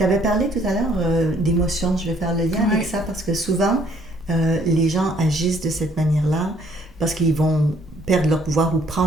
avais parlé tout à l'heure d'émotions. Je vais faire le lien avec ça parce que souvent, les gens agissent de cette manière-là parce qu'ils vont perdre leur pouvoir ou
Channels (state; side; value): normal; both; correlation 0.62